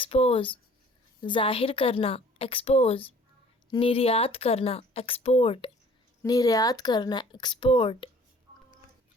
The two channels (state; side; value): normal; both; correlation 0.52